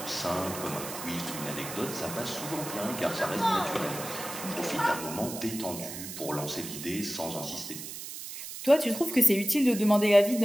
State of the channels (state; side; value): noise; right; hiss, 9 dB below the sound